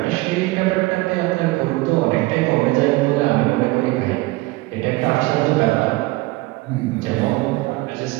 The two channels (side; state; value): left; quieter; 21.2 dB